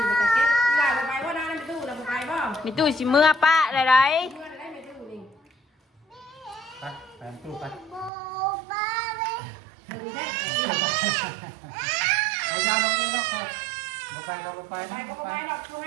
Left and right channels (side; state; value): left; drops out; at 8.1 s